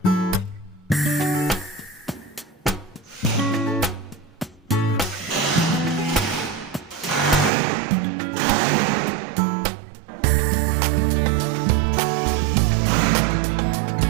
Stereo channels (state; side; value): drops out; left; at 7.5 s